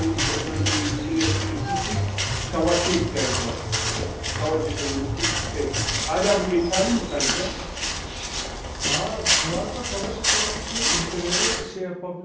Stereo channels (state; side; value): identical; both; correlation 1.00